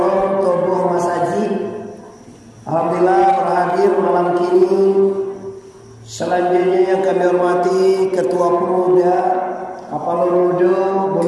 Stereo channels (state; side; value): identical; both; correlation 1.00